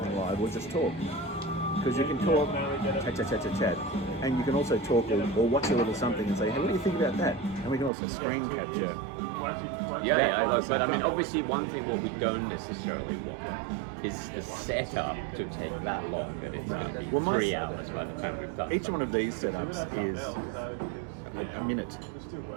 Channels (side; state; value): left; drops out; at 7.9 s